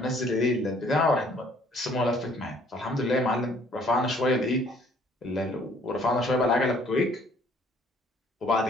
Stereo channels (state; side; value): normal; both; correlation 0.60